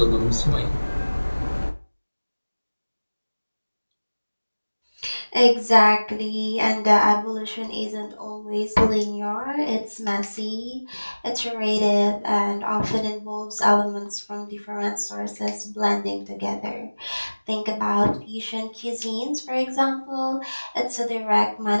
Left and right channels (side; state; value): both; inverted; correlation -1.00